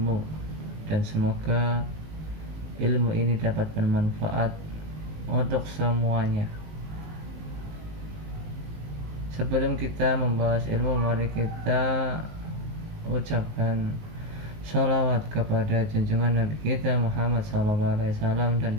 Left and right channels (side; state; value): left; late; 19 ms